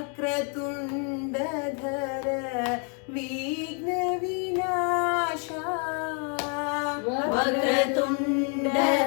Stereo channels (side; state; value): right; quieter; 39.6 dB